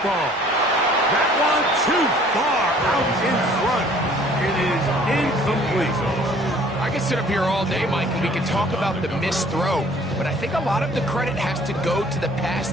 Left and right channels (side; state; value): both; normal; correlation 0.55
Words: ball. That one too far out in front. It is incomplete. I can sit up here all day, Mike, and we can talk about the missed throw, but I think a lot of the credit has to go to the pass